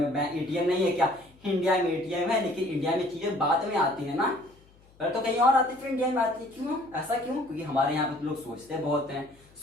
बैंक एटीएम नहीं है क्या? इंडिया में एटीएम है, लेकिन इंडिया में चीजें बाद में आती है ना, पर तो कहीं और आती, फिर इंडिया में आती है। क्यों, ऐसा क्यों? क्योंकि हमारे यहाँ पे लोग सोचते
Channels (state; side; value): noise; left; hum, 28 dB below the sound